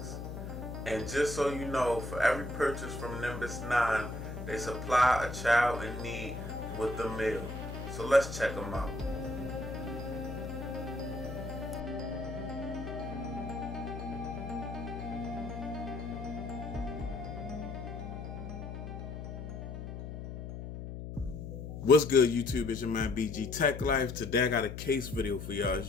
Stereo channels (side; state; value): left; noise; hum, 8 dB below the sound